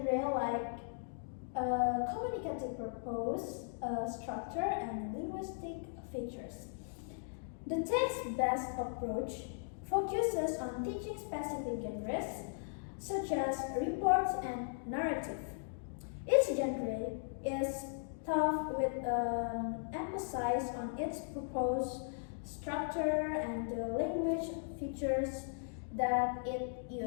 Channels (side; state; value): right; silent; digital silence